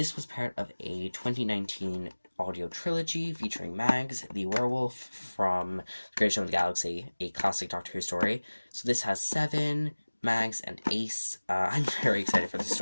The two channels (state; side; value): inverted; both; correlation -1.00